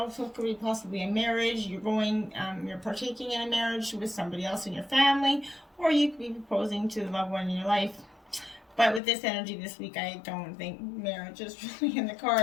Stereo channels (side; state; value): right; drops out; at 9.0 s